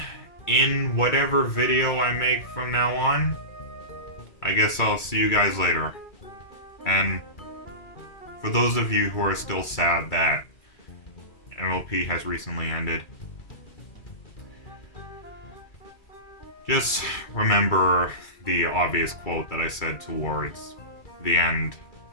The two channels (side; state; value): right; late; 2.3 ms